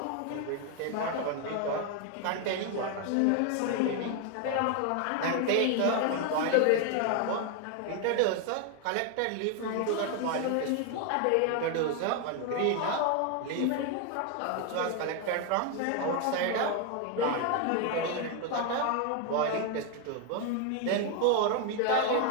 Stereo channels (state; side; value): different; both; correlation 0.01